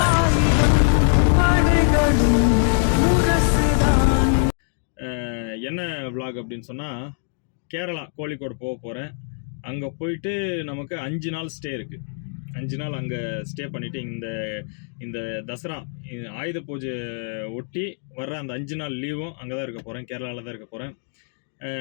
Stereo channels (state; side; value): silent; right; 60 dB below the other